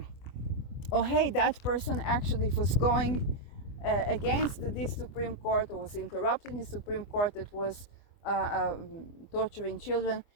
hey, that person actually was going against this Supreme Court, or was interrupting the Supreme Court that was torturing children,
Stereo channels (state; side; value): late; right; 24 ms